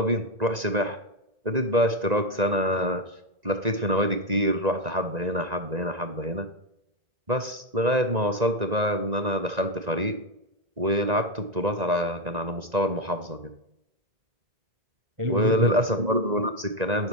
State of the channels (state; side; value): late; left; 1.9 ms